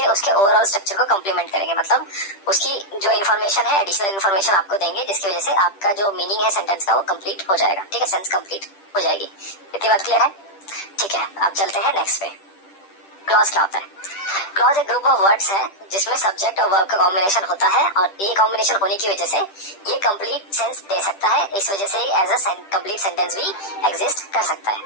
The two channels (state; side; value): late; right; 10 ms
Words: उसके ओवरऑल स्ट्रक्चर को कॉम्प्लीमेंट करेंगे। मतलब उसकी जो इन्फॉर्मेशन है, एडिशनल इन्फॉर्मेशन आपको देंगे, जिसकी वजह से आपका जो मीनिंग है सेंटेंस का वो कंप्लीट हो जाएगा, ठीक है, सेंस कंप्लीट हो जाएगी। इतनी बात क्लियर है? ठीक है, अब चलते हैं नेक्स्ट पे। क्लॉज क्या होता है? क्लॉज एक ग्रुप ऑफ वर्ड्स है जिसमें सब्जेक्ट और वर्ब का कॉम्बिनेशन होता है, और ये कॉम्बिनेशन होने की वजह से ये कंप्लीट सेंस दे सकता है। इस वजह से एज अ कंप्लीट सेंटेंस भी एग्जिस्ट कर सकता है,